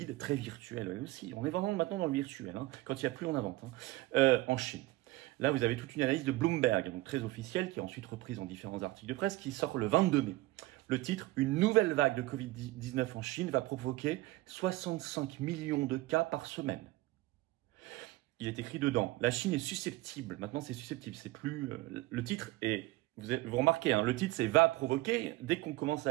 très virtuelle elle aussi. On est vraiment maintenant dans le virtuel. Quand il n'y a plus, on invente. En Chine. Là, vous avez toute une analyse de Bloomberg, donc très officielle, qui est ensuite reprise en différents articles de presse, qui sort le 22 mai. Le titre, « Une nouvelle vague de Covid-19 en Chine va provoquer 65 millions de cas par semaine. » Il est écrit dedans, la Chine est susceptible, maintenant c'est susceptible, c'est plus... le titre est, vous remarquez, le titre c'est « va provoquer », dès qu'on commence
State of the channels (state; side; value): quieter; left; 18.7 dB